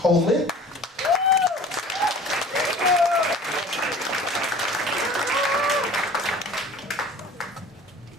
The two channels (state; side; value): normal; both; correlation 0.45